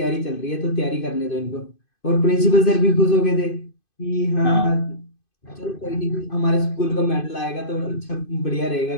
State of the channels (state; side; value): late; right; 2.5 ms